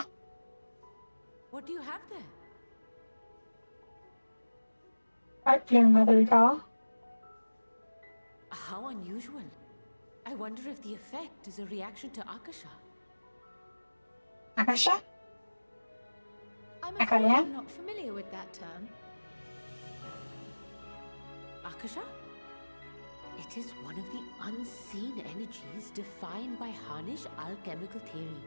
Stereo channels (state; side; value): inverted; both; correlation -1.00